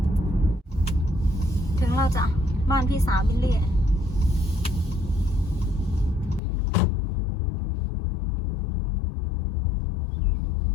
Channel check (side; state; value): right; drops out; at 6.4 s